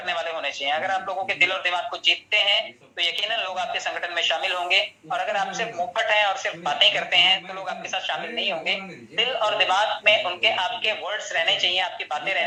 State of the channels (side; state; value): both; identical; correlation 1.00